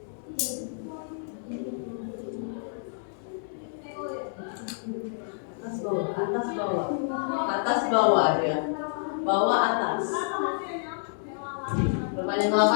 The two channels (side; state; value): right; silent; digital silence